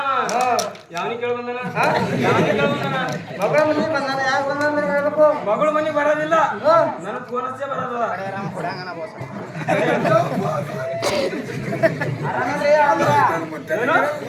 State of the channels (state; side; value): identical; both; correlation 1.00